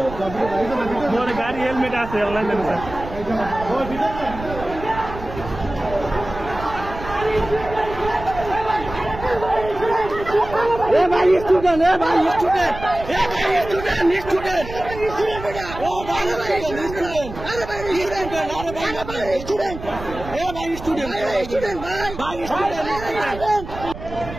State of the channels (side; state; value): right; noise; rumble, 12 dB below the sound